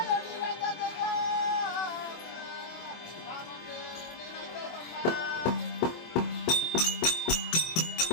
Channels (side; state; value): right; late; 24 ms